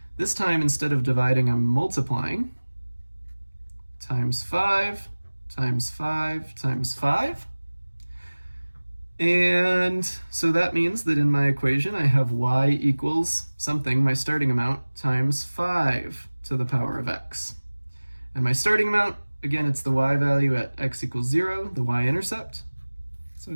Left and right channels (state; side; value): inverted; both; correlation -1.00